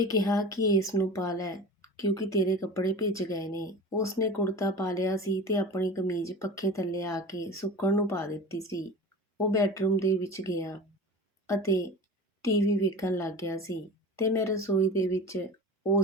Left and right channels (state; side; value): normal; both; correlation 0.34